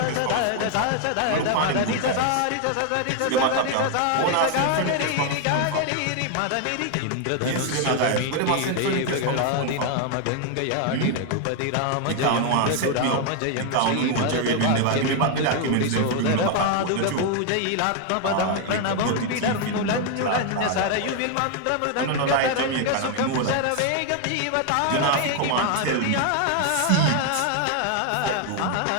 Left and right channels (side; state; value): both; different; correlation 0.01